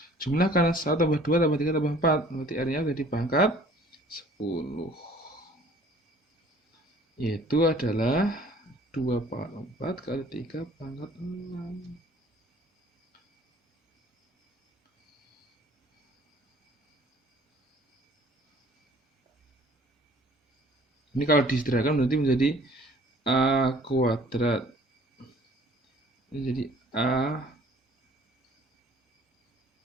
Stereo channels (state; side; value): normal; both; correlation 0.53